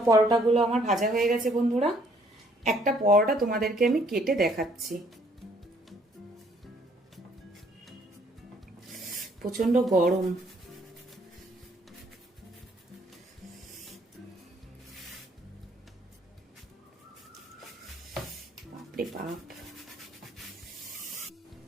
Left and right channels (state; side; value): normal; both; correlation 0.64